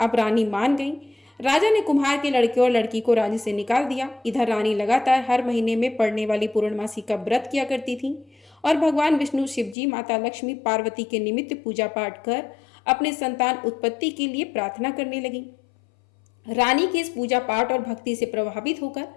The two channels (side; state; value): right; drops out; at 9.8 s